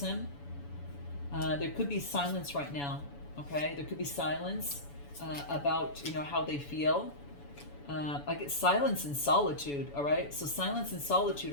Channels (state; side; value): late; right; 7.0 ms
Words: There could be silence right now, okay? There could be silence about, how they feel. I get silence and solitude, all right? So silence and solitude